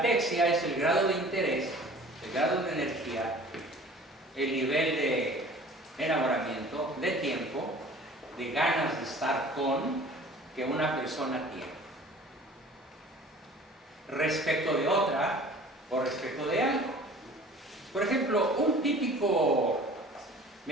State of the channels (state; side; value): normal; both; correlation 0.46